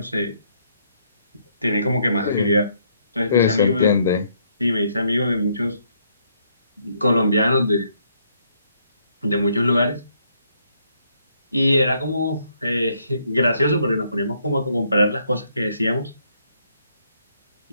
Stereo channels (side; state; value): both; inverted; correlation -0.71